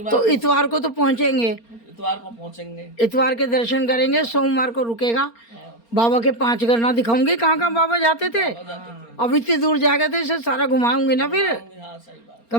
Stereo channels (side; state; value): right; late; 4.3 ms